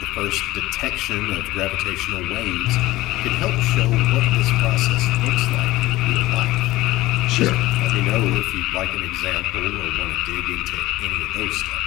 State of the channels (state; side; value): quieter; right; 17.6 dB